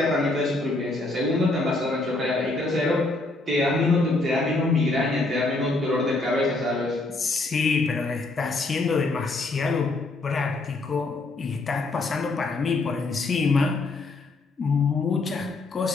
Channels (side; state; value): right; quieter; 3.2 dB